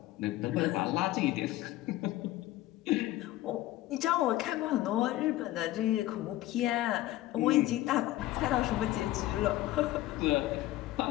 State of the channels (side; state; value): right; quieter; 15.8 dB